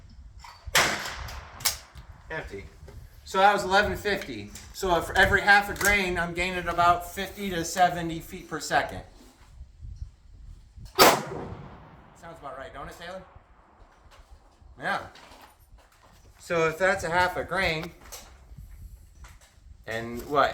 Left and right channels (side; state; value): both; identical; correlation 1.00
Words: Empty. So that was 1150. So for every half a grain, I'm gaining about 50 to 70 feet per second. Sounds about right, don't it, Taylor? Yeah. So if that's a half a grain, and